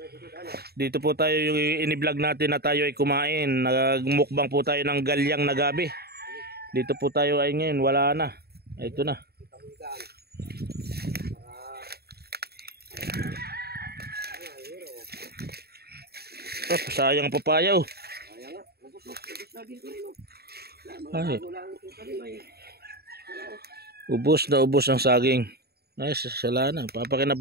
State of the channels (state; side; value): late; left; 0.46 ms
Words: Dito po tayo yung ini-vlog natin na tayo ay kumain. Nagmukbang po tayo ng galyang na gabi. Dito po tayo ay ngayon. Wala na. Ito na. Oh, sayang papaya oh. Ay. Ubos ang saging. Ay, sala na.